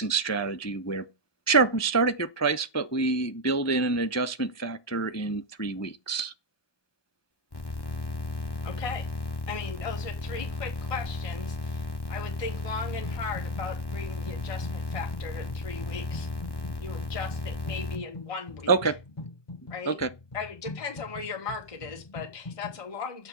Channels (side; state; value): right; late; 1.2 ms